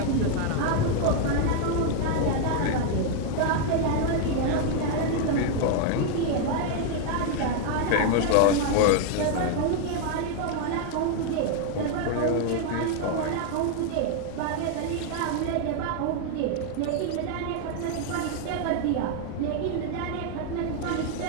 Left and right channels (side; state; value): both; different; correlation 0.00